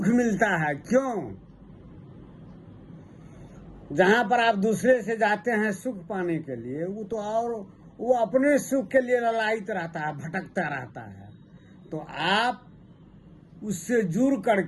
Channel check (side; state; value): both; identical; correlation 1.00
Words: मिलता है। क्यों? जहां पर आप दूसरे से जाते हैं सुख पाने के लिए, वो तो और वो अपने सुख के लिए ललायित रहता है, भटकता रहता है। तो आप उससे जुड़